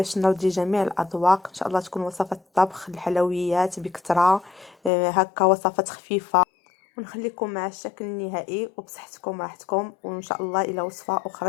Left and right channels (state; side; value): drops out; right; at 4.9 s